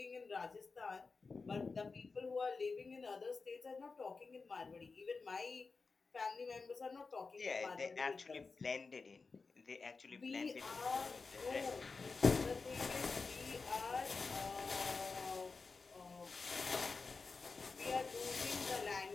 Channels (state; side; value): quieter; right; 4.4 dB